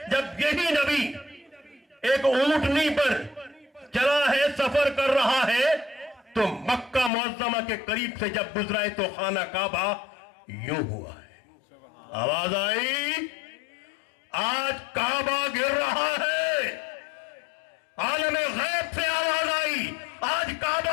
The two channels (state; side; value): drops out; right; at 7.1 s